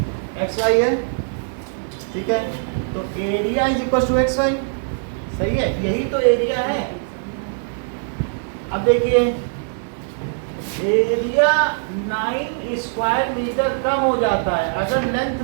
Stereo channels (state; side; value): silent; left; digital silence